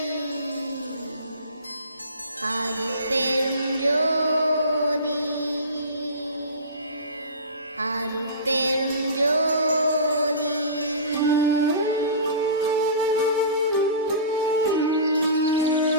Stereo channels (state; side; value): inverted; both; correlation -0.34